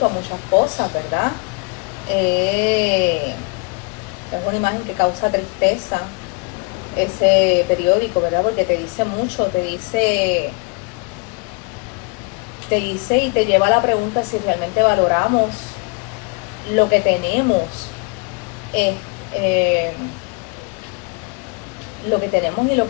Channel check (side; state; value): right; quieter; 30.9 dB